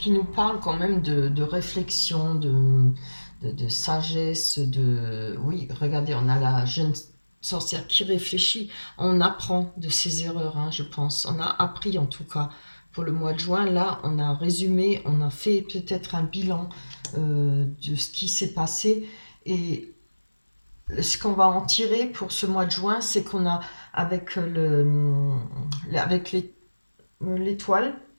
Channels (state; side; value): inverted; both; correlation -1.00